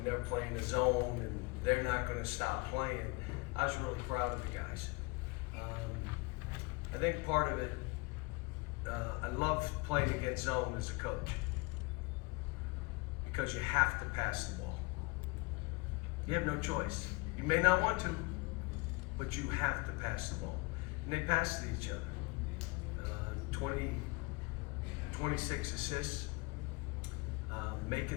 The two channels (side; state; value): right; quieter; 25.9 dB